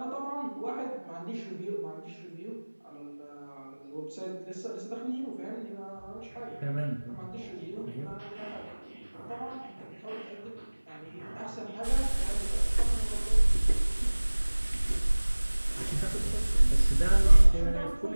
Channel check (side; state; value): both; inverted; correlation -1.00